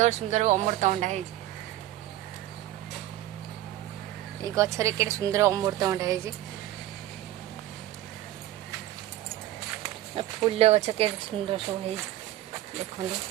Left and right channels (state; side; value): quieter; left; 14.3 dB